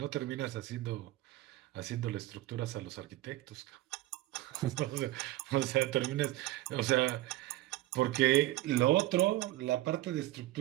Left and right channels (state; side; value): quieter; left; 16.6 dB